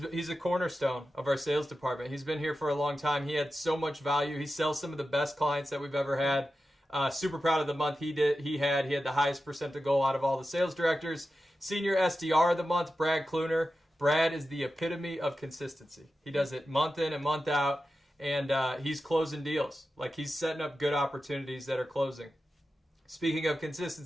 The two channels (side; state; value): both; normal; correlation 0.92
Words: a cornerstone of our sales department. He's been here for a long time. He had so much value. He sells some of the best clients that we've ever had. Super proud of the month he had the highest percent to goal out of all the sales directors. Senior SDR of the Month, Brad Kluner. Brad is the epitome of consistency. He does it month in and month out, and he's closing deals. Like, he's setting up good opportunities that are closing. Speaking of